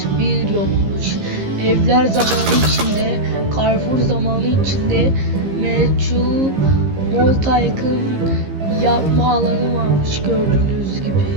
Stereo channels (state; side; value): late; left; 15 ms